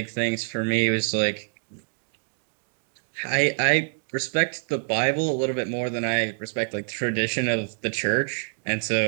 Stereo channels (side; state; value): left; silent; digital silence